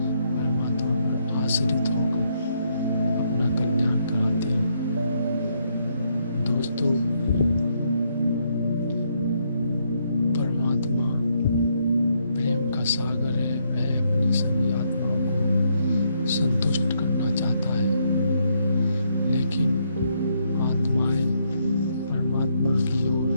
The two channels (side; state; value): both; inverted; correlation -0.74